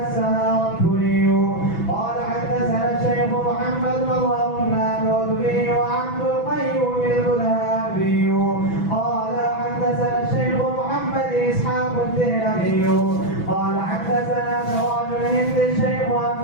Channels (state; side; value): late; right; 6.0 ms